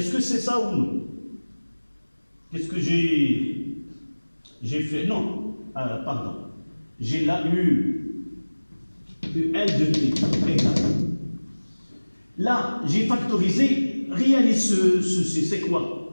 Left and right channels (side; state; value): both; inverted; correlation -1.00